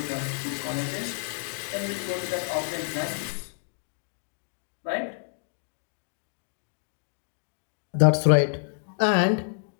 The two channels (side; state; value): right; silent; digital silence